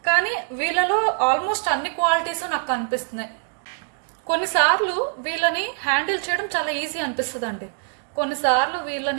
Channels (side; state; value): left; silent; 63 dB below the other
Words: కానీ వీళ్ళలో ఆల్మోస్ట్ అన్ని క్వాలిటీస్ నాకు కనిపిస్తున్నాయి. కొన్నిసార్లు వీళ్ళని హ్యాండిల్ చేయడం చాలా ఈజీ అనిపిస్తుంది అండి, కొన్నిసార్లు